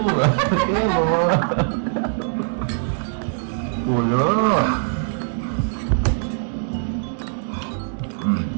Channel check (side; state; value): left; silent; digital silence